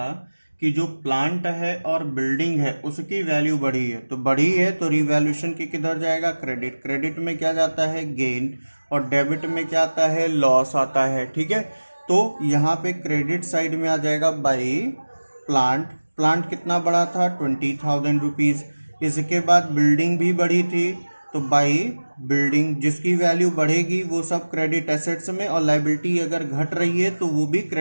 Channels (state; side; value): inverted; both; correlation -1.00